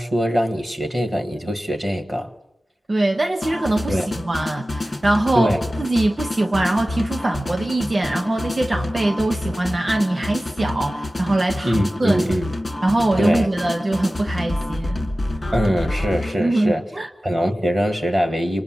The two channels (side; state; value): both; normal; correlation 0.96